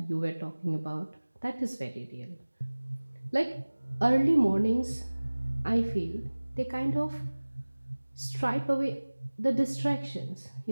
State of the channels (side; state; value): both; inverted; correlation -1.00